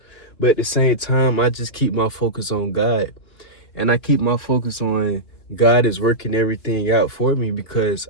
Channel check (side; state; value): right; late; 2.9 ms